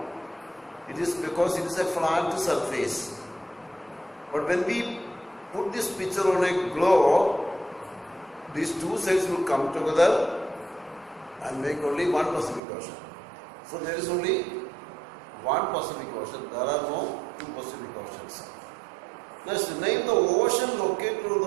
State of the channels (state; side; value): drops out; left; at 12.6 s